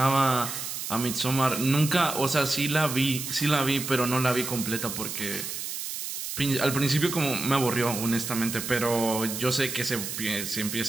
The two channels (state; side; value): noise; right; hiss, 6 dB below the sound